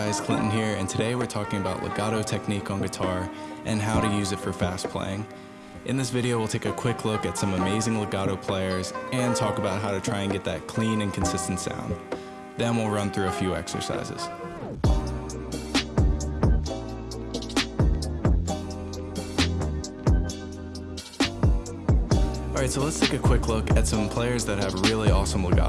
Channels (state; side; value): identical; both; correlation 1.00